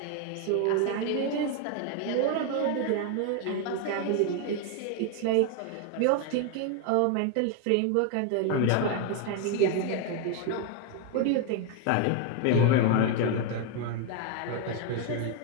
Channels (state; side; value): different; both; correlation 0.01